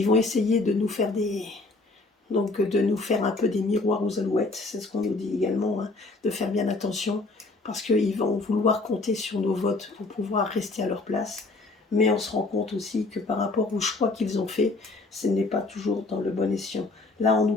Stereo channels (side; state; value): right; quieter; 3.4 dB